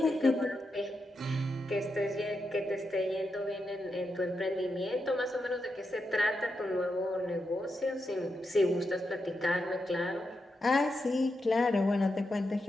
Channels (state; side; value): normal; both; correlation 0.85